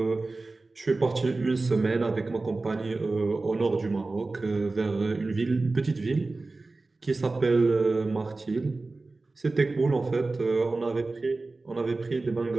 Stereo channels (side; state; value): left; quieter; 3.4 dB